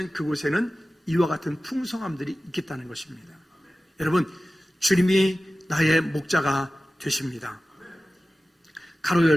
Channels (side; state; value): both; normal; correlation 0.96